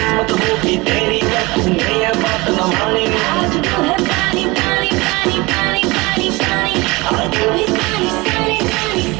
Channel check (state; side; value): quieter; left; 23.5 dB